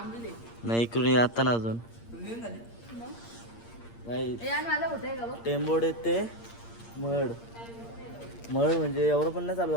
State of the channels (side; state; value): right; late; 8.7 ms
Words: नाही इकडून आता ना अजून नाही. टेंबोडे ते मड म्हणजे एवढं पण नाही चालू